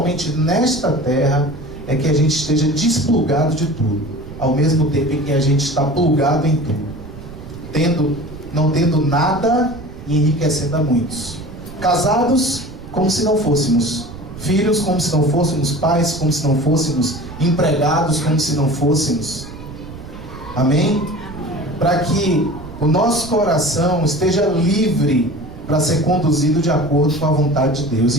nesta terra, é que a gente esteja desplugado de tudo, ao mesmo tempo em que a gente está plugado em tudo, não tendo nada e enriquecendo a muitos. Casados como se não fôssemos, filhos como se não fôssemos, pais como se não fôssemos, empregados como se não fôssemos. Amém? Para que o nosso coração esteja livre para ser conduzido de acordo com a vontade de Deus.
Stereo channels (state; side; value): noise; right; rumble, 14 dB below the sound